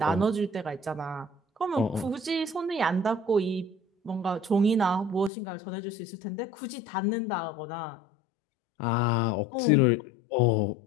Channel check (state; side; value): drops out; right; at 5.3 s